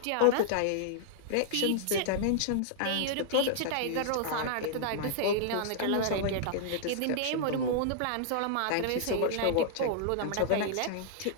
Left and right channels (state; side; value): different; both; correlation -0.01